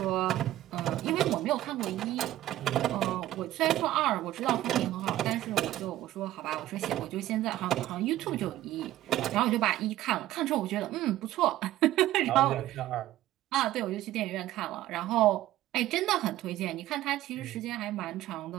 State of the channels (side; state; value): left; quieter; 14.4 dB